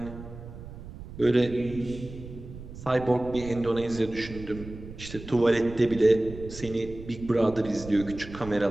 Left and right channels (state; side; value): noise; right; rumble, 13 dB below the sound